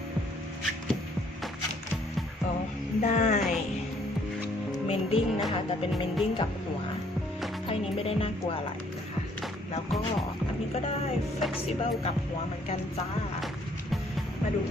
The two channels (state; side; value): normal; both; correlation 0.63